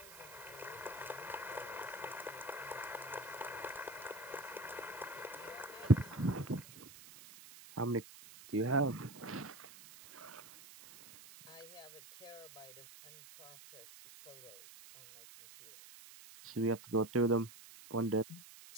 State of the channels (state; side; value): noise; right; hiss, 17 dB below the sound